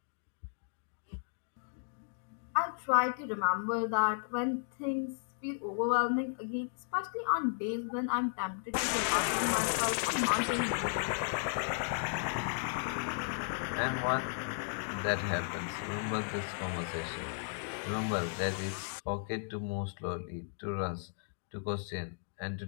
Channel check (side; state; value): right; silent; digital silence